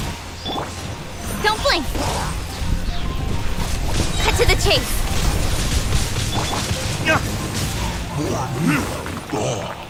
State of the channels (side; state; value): both; identical; correlation 1.00